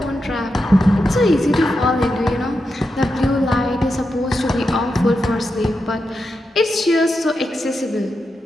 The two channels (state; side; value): normal; both; correlation 0.87